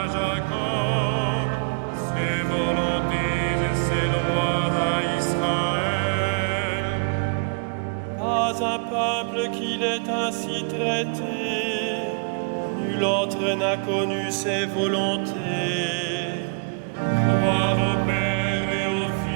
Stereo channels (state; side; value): quieter; left; 39.9 dB